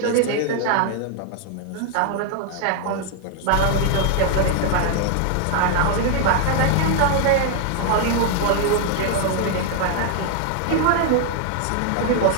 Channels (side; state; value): both; different; correlation 0.00